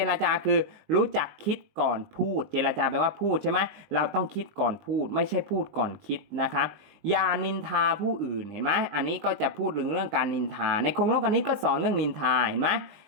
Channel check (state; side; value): late; left; 19 ms